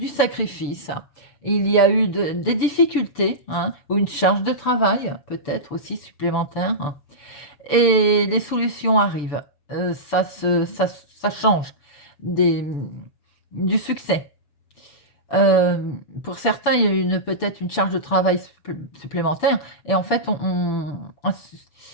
sacrifice, il y a eu des difficultés, hein, ou une charge de travail, peut-être aussi supplémentaire. et les solutions arrivent. Ça change des, du succès. Pour certains, il y a peut-être une charge de travail supplémentaire et en fait, on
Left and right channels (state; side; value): late; right; 6.9 ms